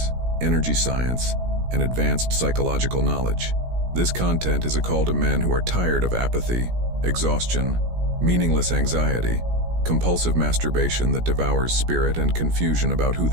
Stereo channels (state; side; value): late; left; 17 ms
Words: energy science, and advanced psychological knowledge. This content is a call to men who are tired of apathy, exhaustion, meaningless anxiety, compulsive masturbation that devours spirit, and confusion about who